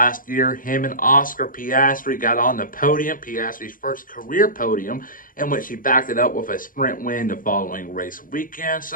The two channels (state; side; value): late; right; 0.40 ms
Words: year, him and Oscar Piastri got on the podium, Piastri's first career podium, in which he backed it up with a sprint win the following race weekend.